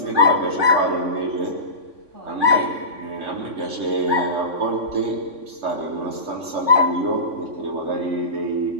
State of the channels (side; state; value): left; late; 3.5 ms